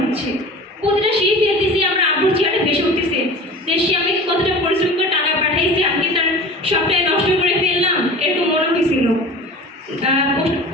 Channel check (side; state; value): both; normal; correlation 0.38